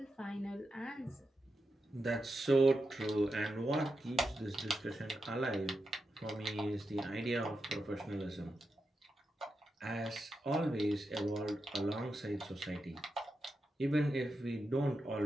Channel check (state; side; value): normal; both; correlation 0.88